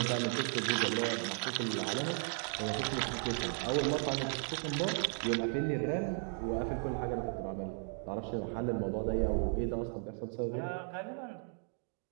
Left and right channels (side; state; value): left; silent; 54 dB below the other